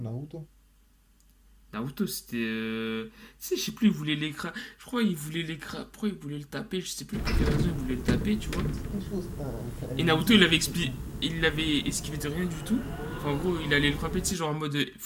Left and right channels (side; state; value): both; identical; correlation 1.00